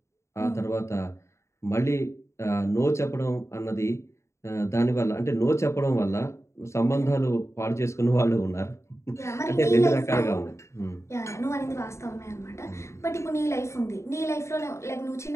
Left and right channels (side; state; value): right; late; 0.14 ms